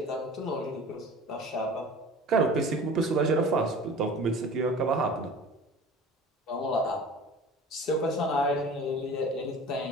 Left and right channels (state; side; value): normal; both; correlation 0.41